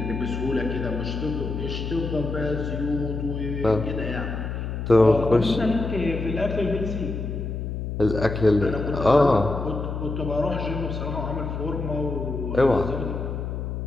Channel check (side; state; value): left; noise; hum, 4 dB below the sound